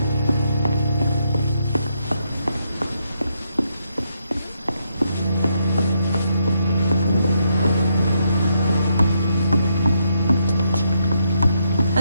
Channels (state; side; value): inverted; both; correlation -0.77